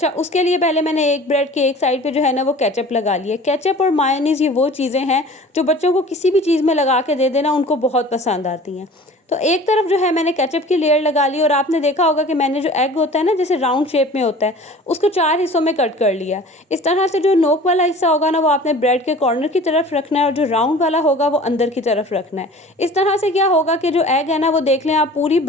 उसके लिए पहले मैंने एक ब्रेड के एक साइड पे जो है ना वो केचप लगा लिया। केचप और मायोनीज़ ये वो चीज़ें हैं जो बच्चों को किसी भी चीज़ में लगा के दे देना उनको बहुत पसंद आती हैं। तो एक तरफ जो है मैंने केचप की लेयर लगा ली, और आपने देखा होगा कि मैंने जो एग होता है ना जैसे राउंड शेप में होता है उसको 4 हिस्सों में कट कर लिया। इस तरह से जो नोक वाला हिस्सा होगा ना वो आपने ब्रेड के कॉर्नर की तरफ रखना है, और जो राउंड वाला होगा वो अंदर की तरफ रखना है। इस तरह से क्या होगा कि जो एग है ना वो देख लें आप पूरी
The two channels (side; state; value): both; normal; correlation 0.43